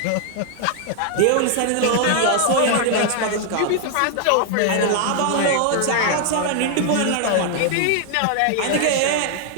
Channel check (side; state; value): both; different; correlation 0.00